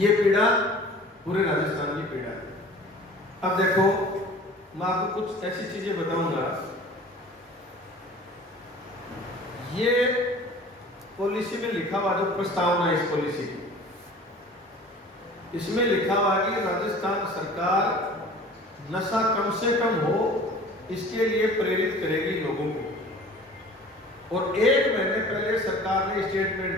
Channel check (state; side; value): normal; both; correlation 0.45